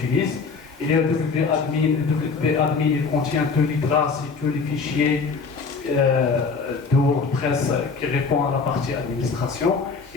Il y a WP-admin. WP-admin, il contient tous les traces et tous les fichiers de WordPress qui répondent à la partie administration.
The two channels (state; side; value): quieter; right; 4.8 dB